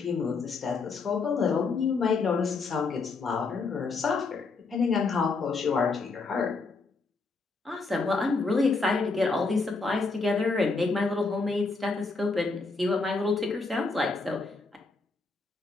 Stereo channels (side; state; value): right; quieter; 4.0 dB